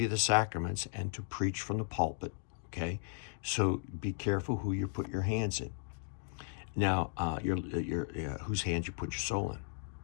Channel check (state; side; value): silent; right; digital silence